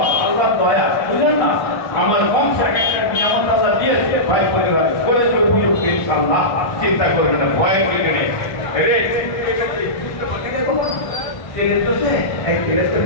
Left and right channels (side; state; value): right; late; 1.6 ms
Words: আল্লাহর দয়া, বুঝলেন না, আমার বংশ একটা নিয়ামত আল্লাহ দিয়েছে, ভাই পরিবার করে তো উপযুক্ত ইনশাআল্লাহ, চিন্তা করবেন না, ভয় করে নেই রে।